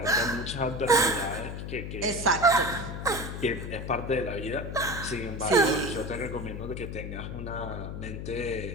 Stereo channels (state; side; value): noise; left; hum, 6 dB below the sound